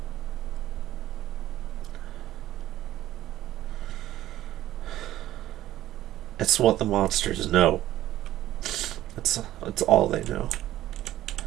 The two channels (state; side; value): quieter; left; 14.0 dB